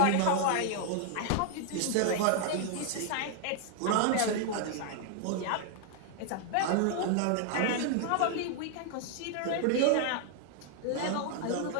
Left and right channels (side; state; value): both; different; correlation 0.00